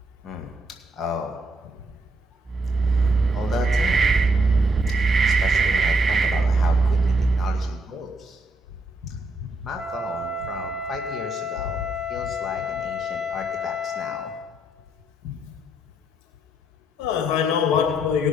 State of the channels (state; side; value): normal; both; correlation 0.75